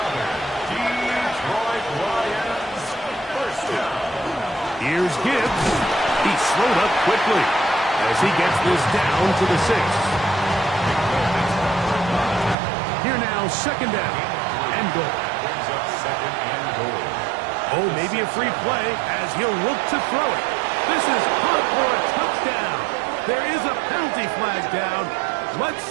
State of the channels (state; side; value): drops out; left; at 12.6 s